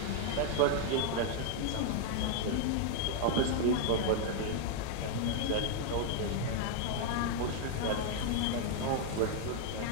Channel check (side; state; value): both; different; correlation 0.00